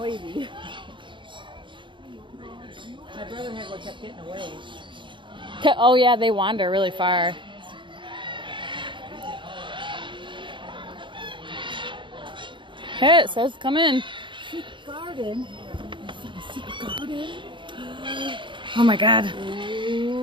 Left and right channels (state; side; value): late; left; 0.23 ms